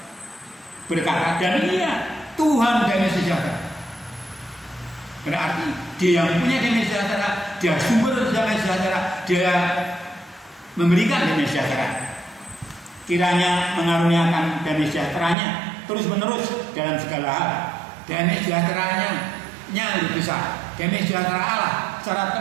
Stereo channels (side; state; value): left; drops out; at 15.4 s